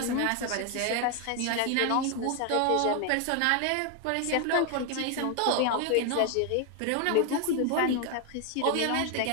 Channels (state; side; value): different; both; correlation 0.01